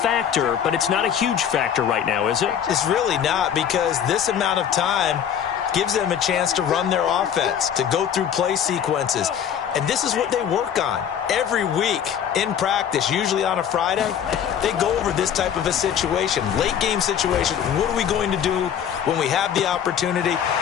but it's not a huge factor right now, is it? It's really not, because this amount of time gives them a chance to run their offense, to go through play sequences. And this is what they work on every week in practice, usually on a Friday. They go over this type of a situation, late game situation. What are we going to do when we have the opportunity?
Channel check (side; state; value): right; quieter; 8.9 dB